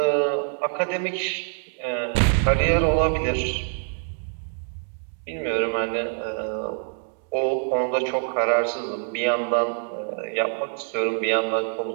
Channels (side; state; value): left; silent; 62 dB below the other